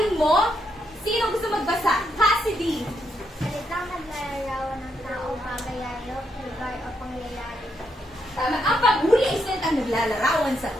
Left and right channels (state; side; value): normal; both; correlation 0.79